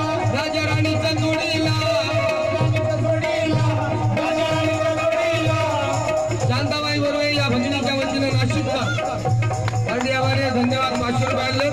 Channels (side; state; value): right; noise; rumble, 27 dB below the sound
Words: राजा राणीच्या जोडीला शांताबाई बरोबर या भगिनीच्या वतीने नाशिकचा धन्यवाद. 500 रुपये